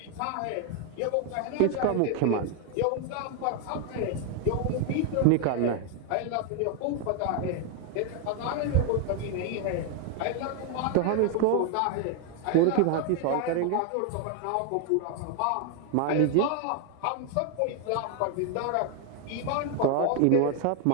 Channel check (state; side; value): different; both; correlation 0.01